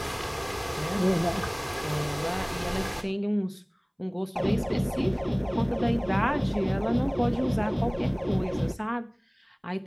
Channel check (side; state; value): both; identical; correlation 1.00